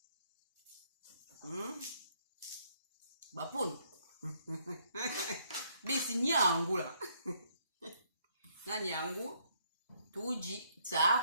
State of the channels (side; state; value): both; inverted; correlation -0.70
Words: Bapun. Bisi nyangu là. Na nyangu. Tuji